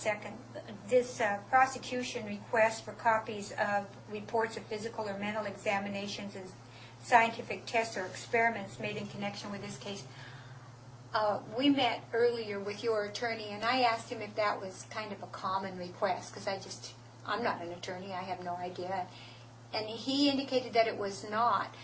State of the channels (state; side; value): identical; both; correlation 1.00